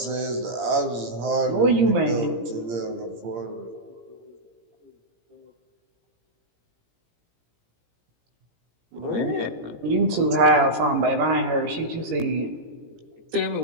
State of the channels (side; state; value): left; late; 17 ms